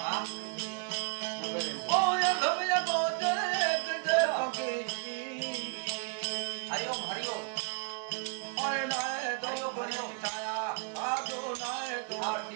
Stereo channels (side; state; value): left; quieter; 35.9 dB